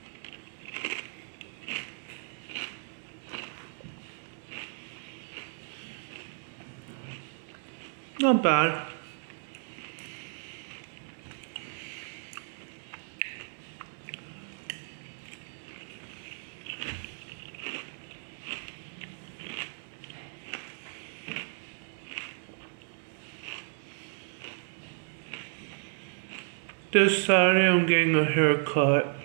Not bad. This Saturday I'm getting a haircut.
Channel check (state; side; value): silent; left; 56 dB below the other